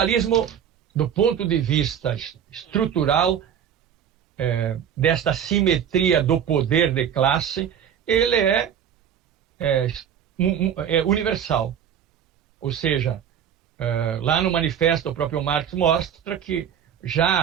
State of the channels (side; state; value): left; quieter; 8.8 dB